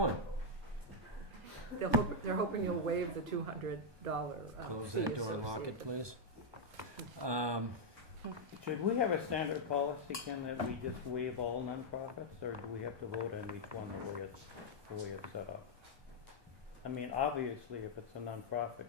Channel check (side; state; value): left; late; 1.2 ms